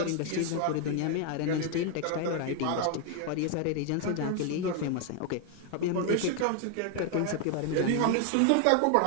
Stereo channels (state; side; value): different; both; correlation 0.01